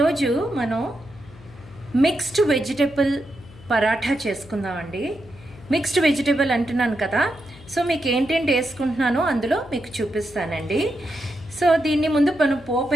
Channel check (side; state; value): left; noise; hum, 21 dB below the sound